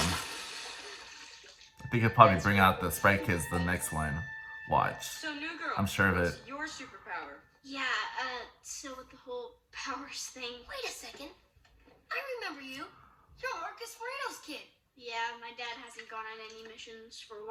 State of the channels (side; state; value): both; identical; correlation 1.00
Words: I think he'll probably bring out the Sprite Kids the next one. Watch. So, new girl. I'm sure of it. What's your superpower? Yeah, so with the whole powers thing. Wait a second. I remember you. You're Marcus Moreno's kid. Yeah, my dad hasn't gone on any missions for a